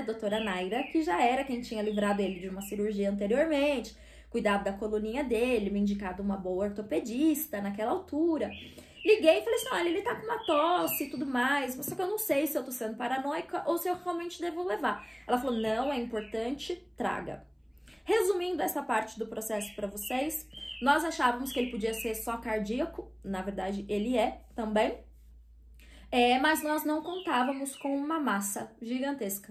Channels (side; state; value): both; identical; correlation 1.00